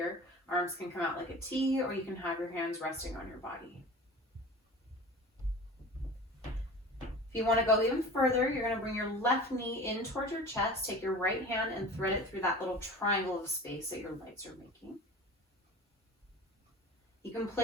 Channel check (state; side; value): normal; both; correlation 0.38